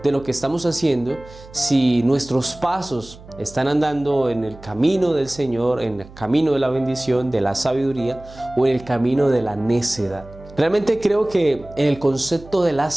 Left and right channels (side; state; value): right; noise; hum, 20 dB below the sound